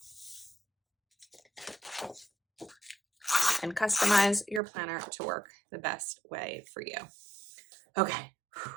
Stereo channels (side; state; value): left; drops out; at 4.6 s